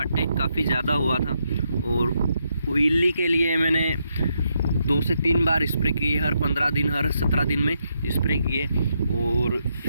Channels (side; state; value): both; inverted; correlation -0.79